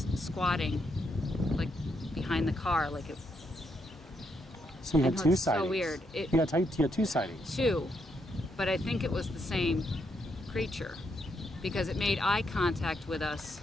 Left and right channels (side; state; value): both; normal; correlation 0.77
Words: squatting like behind the car, like it. So you had two sightings. So weird. You had two sightings. Two, but I think it was the same creature because it made eye contact with us.